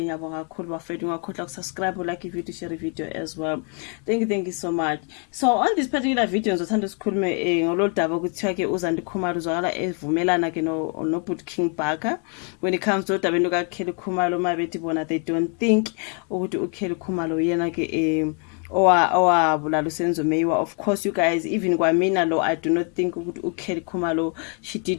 ngiyabonga kakhulu bafethu ungakhohlwa ukusubscribe, like video, share video as well. Thank you so much. So on this particular video ngizothanda ukukhuluma ngololu daba ukuthiwa ke uZandi Khumalo uzwakala evumelana ke no Boot King Bhaka when it comes to udabeni kaKelly Khumalo mabethi bona they don't think ukuthi uKelly Khumalo yena ke owabulala uSenzo Meyiwa. Of course you guys, even kwamina lo I do not think ukuthi uKelly Khumalo she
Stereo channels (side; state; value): right; quieter; 39.9 dB